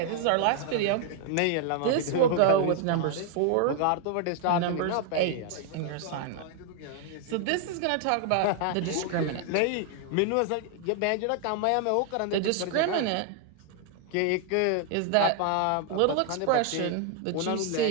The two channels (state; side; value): different; both; correlation 0.00